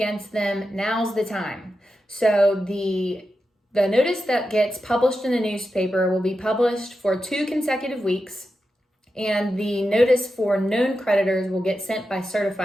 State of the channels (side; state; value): both; normal; correlation 0.90